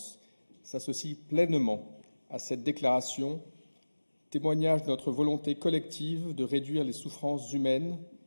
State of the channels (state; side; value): inverted; both; correlation -1.00